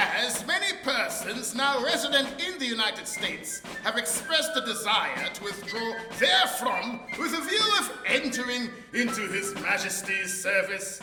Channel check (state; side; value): identical; both; correlation 1.00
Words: many persons now resident in the United States have expressed a desire to withdraw therefrom with a view of entering into His Majesty's service,